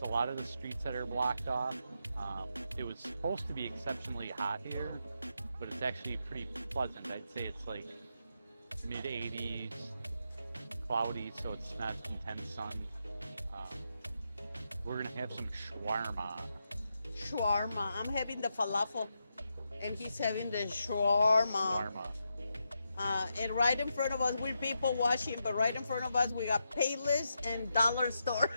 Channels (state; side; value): inverted; both; correlation -0.84